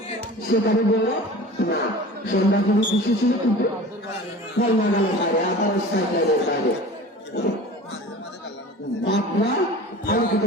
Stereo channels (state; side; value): normal; both; correlation 0.38